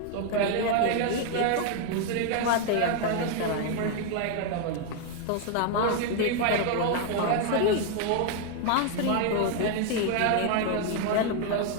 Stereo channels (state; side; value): different; both; correlation 0.00